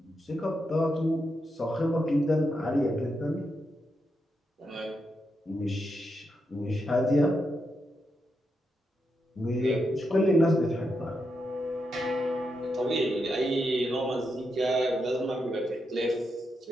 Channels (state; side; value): normal; both; correlation 0.84